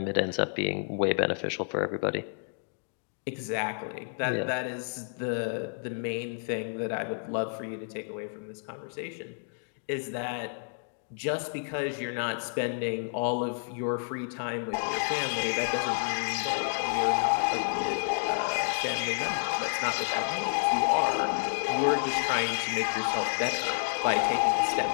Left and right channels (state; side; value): silent; right; digital silence